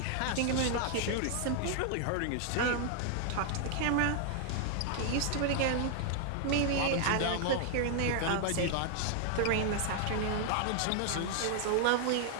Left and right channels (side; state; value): both; different; correlation 0.00